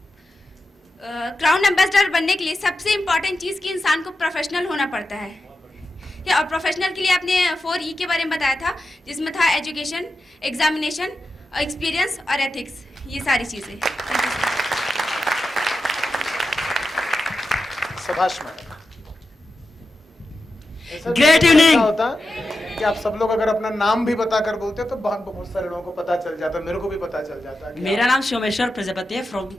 क्राउन एम्बेसडर बनने के लिए सबसे इम्पॉर्टेंट चीज़ कि इंसान को प्रोफेशनल होना पड़ता है। और प्रोफेशनल के लिए आपने 4E के बारे में बताया था, जिसमें था एजुकेशन, एग्जामिनेशन, एक्सपीरियंस और एथिक्स, ये सारी चीज़ें। शाबाश मैडम। Great evening. होता कि आप सब लोग अगर अपना नाम भी बताकर बोलते तो बहुत सारे लोगों को पता चल जाता, मेरे को भी पता चल जाता। मेरा नाम सोमेश्वर प्रजापति है, फ्रॉम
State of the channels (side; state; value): both; normal; correlation 0.90